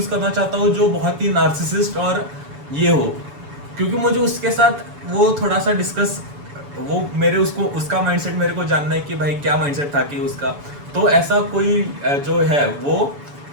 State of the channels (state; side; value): late; left; 7.0 ms